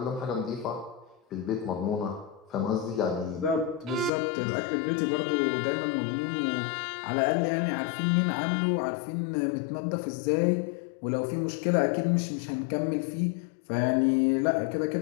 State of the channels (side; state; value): right; drops out; at 4.1 s